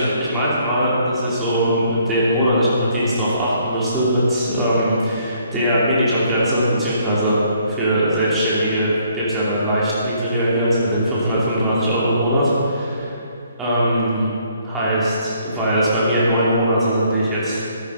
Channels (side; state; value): both; inverted; correlation -0.66